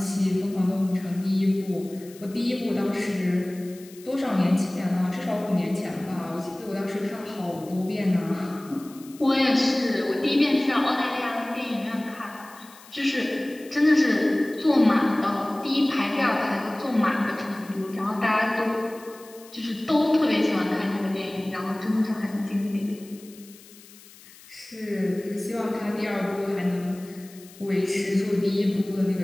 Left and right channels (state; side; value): noise; left; hiss, 22 dB below the sound